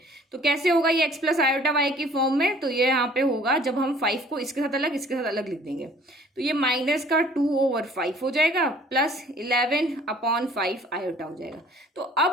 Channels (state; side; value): normal; both; correlation 0.54